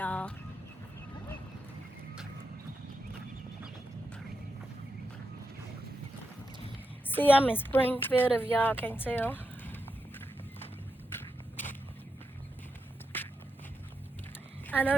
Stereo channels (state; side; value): normal; both; correlation 0.86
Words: See, I'm in Springfield, if y'all can't tell. I